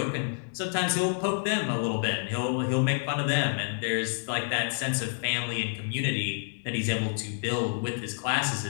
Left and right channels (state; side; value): silent; right; digital silence